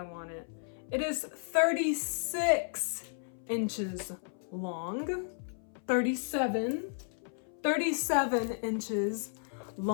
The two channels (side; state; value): right; silent; 55 dB below the other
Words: want it. It is 36 inches long. 37 inches